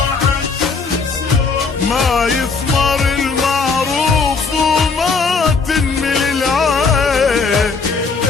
ما يثمر المعروف وما تنمل العين،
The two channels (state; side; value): quieter; right; 4.7 dB